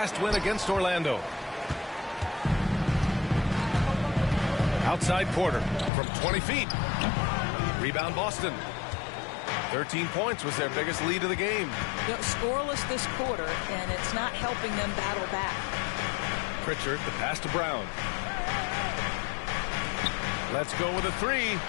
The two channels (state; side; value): drops out; right; at 5.9 s